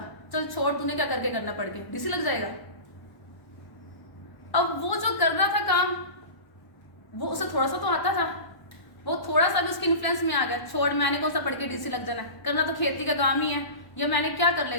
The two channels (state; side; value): late; right; 1.1 ms